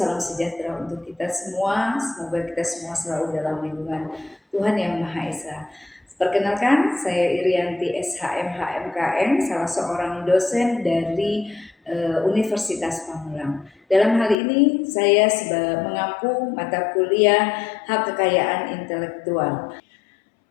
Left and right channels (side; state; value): right; drops out; at 14.4 s